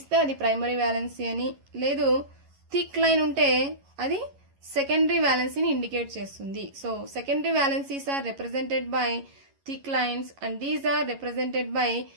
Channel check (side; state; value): left; late; 11 ms